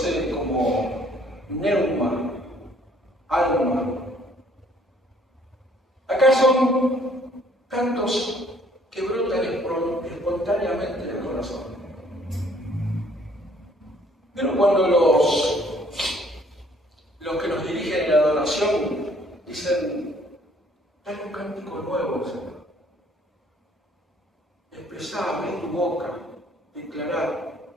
como pneuma? son cantos que brotan espontáneamente del corazón. Pero cuando los que nos dirigen en la adoración dicen, dale un cántico nuevo, Señor. Expresar, abrir tu boca, declarar.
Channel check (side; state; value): both; normal; correlation 0.61